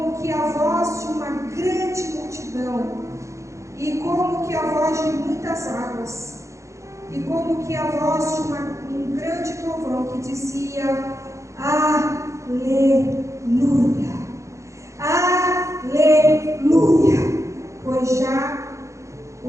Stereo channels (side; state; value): left; late; 0.15 ms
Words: que a voz de uma grande multidão, e como que a voz de muitas águas, e como que a voz de um grande trovão que dizia: Aleluia, aleluia, pois já